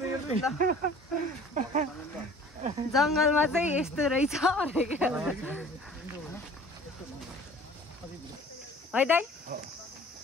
जङ्गलमा चाहिँ यस्तो रहेछ है दाइ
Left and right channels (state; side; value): normal; both; correlation 0.48